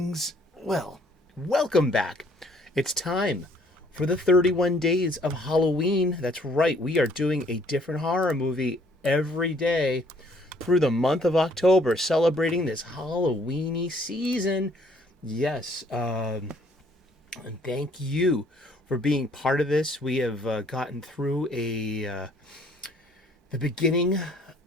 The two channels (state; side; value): normal; both; correlation 0.62